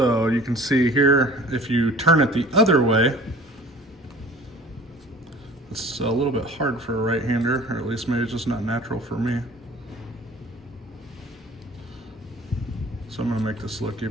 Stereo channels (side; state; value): both; normal; correlation 0.46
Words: you can see here, if you turn it the other way, it's a little bit hard for a right-hander, or at least maybe it's just not natural for me. So I'm gonna make this look